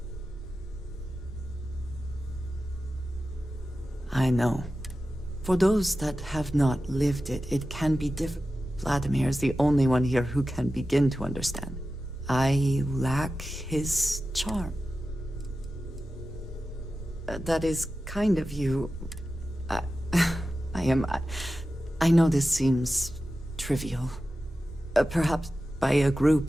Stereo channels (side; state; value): both; normal; correlation 0.93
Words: I know. For those that have not lived it, it can be difficult. Vladimir is the only one here who can begin to understand. I lack his charm. That is kind of you. I know this seems trivial. Perhaps by a